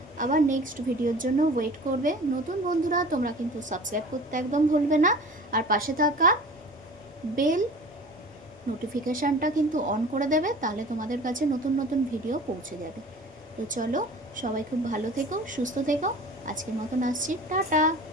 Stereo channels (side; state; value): both; normal; correlation 0.41